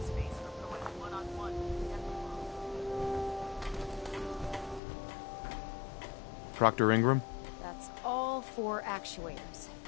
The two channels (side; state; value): right; drops out; at 4.8 s